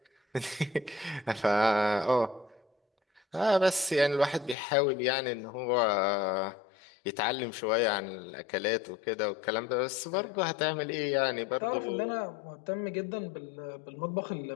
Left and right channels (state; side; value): drops out; right; at 4.5 s